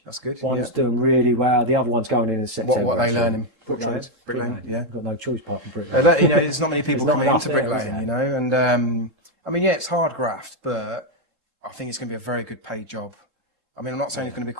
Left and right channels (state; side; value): late; left; 3.7 ms